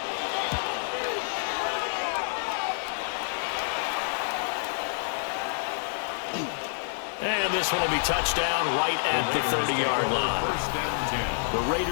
And this one will be touchdown right at the 30-yard line. The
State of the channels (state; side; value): silent; right; digital silence